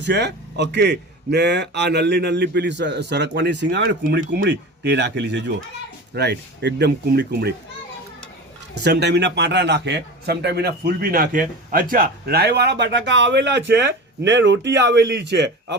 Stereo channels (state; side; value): normal; both; correlation 0.31